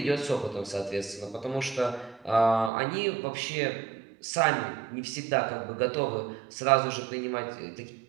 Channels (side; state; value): left; drops out; at 2.7 s